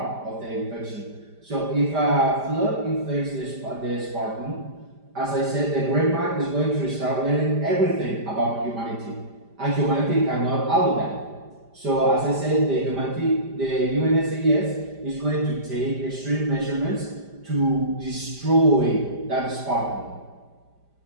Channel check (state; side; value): late; left; 5.0 ms